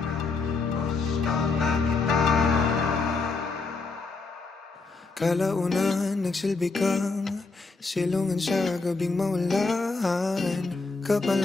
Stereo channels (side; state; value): right; quieter; 4.0 dB